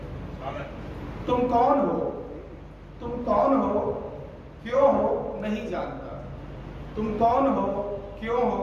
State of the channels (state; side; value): identical; both; correlation 1.00